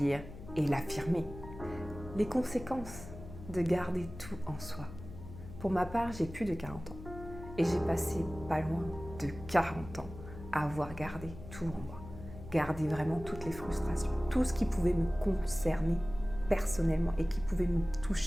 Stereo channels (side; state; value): left; noise; hum, 13 dB below the sound